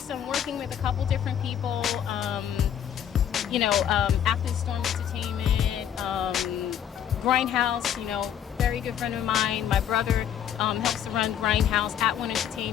I'm working with a couple different people. After the Storm Entertainment, Grindhouse, very good friend of mine. My brother helps to run Grindhouse, At One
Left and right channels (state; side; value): quieter; right; 9.5 dB